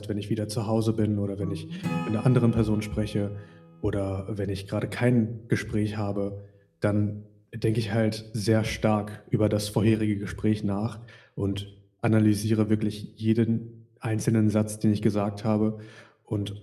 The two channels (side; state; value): both; identical; correlation 1.00